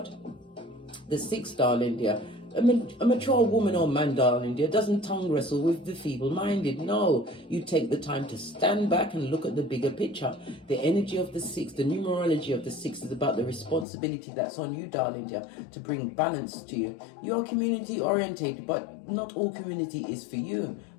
The 6, darling dear. A mature woman or man, darling dear, doesn't tongue wrestle with the feeble-minded. No, you take the time to stand back and look at the bigger picture. The energy of the 6, the numerology of the 6 is about the responsibility that's on you, darling dear, to bring balance to you. You are community-orientated, but not all community is for you,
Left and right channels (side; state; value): right; drops out; at 13.9 s